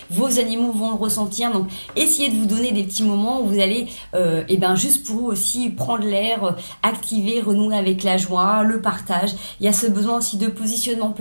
vos animaux vont le ressentir. Donc essayez de vous donner des petits moments où vous allez juste pour vous aussi prendre l'air, activer, renouer avec la joie, le partage. Il y a ce besoin aussi de positionnement.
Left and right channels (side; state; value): both; inverted; correlation -1.00